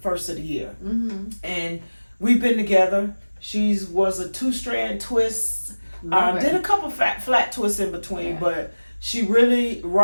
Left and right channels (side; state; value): both; inverted; correlation -1.00